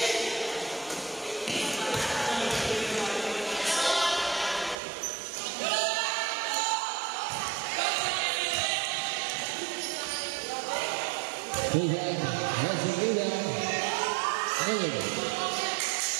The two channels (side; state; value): left; drops out; at 4.8 s